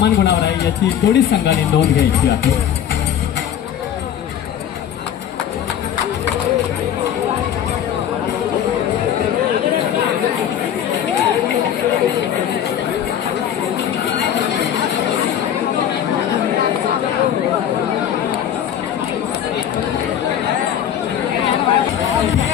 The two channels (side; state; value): right; quieter; 9.7 dB